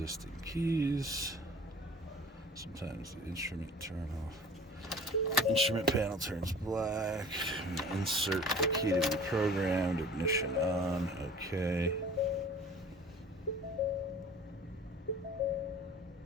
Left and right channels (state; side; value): normal; both; correlation 0.45